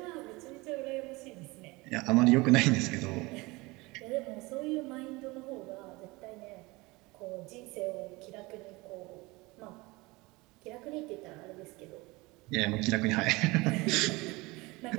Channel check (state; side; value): quieter; left; 23.2 dB